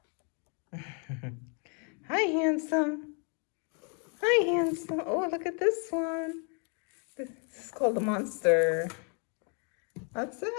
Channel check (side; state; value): right; quieter; 38.2 dB